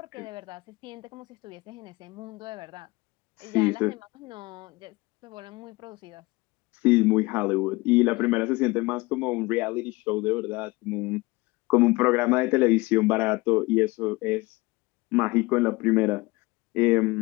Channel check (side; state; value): right; quieter; 22.8 dB